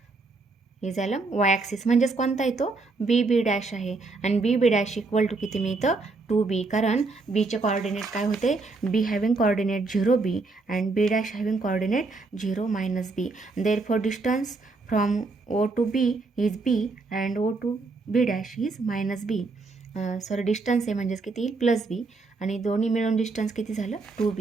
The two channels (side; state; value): left; quieter; 3.7 dB